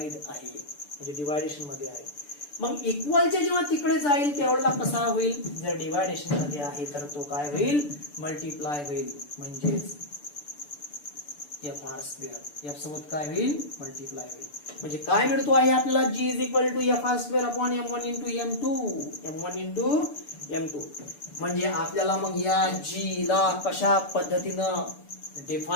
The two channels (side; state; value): right; late; 6.9 ms